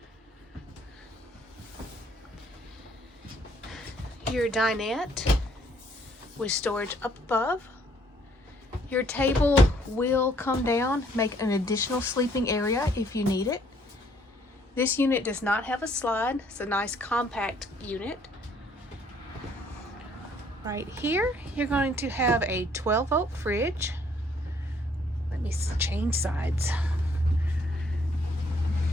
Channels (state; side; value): normal; both; correlation 0.64